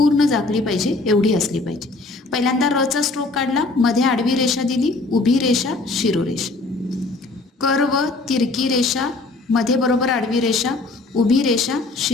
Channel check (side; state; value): right; quieter; 3.4 dB